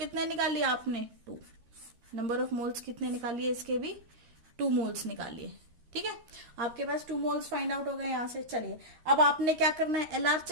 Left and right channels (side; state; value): left; late; 13 ms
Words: निकाल लिया आपने 2, नंबर ऑफ मोल्स कितने निकालिए इसके भी 2 मोल्स निकालिए, ठीक है। आपके पास 2 मोल्स फाइंड आउट हो गए यहां से। चलिए अब आपने क्या करना है, एलआर